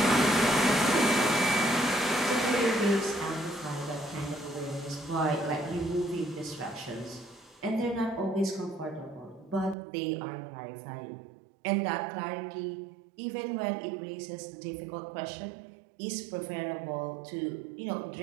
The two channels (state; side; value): drops out; left; at 9.8 s